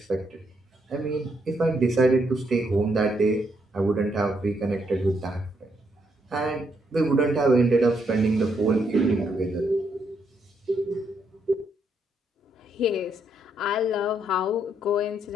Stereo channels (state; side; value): normal; both; correlation 0.76